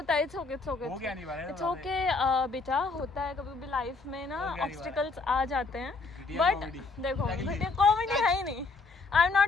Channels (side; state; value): right; quieter; 3.9 dB